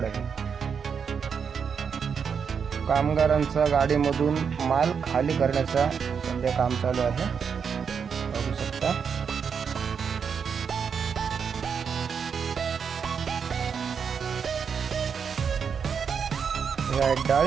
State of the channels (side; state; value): left; quieter; 6.6 dB